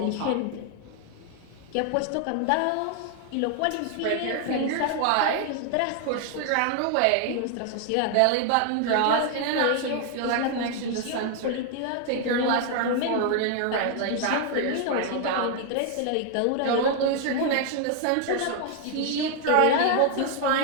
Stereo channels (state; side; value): different; both; correlation 0.00